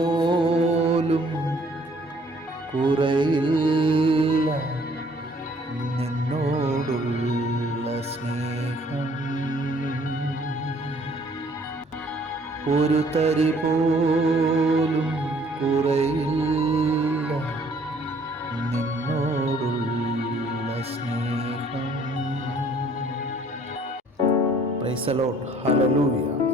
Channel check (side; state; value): both; normal; correlation 0.59